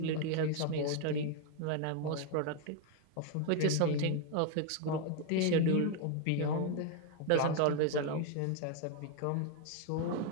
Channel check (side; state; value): both; different; correlation 0.01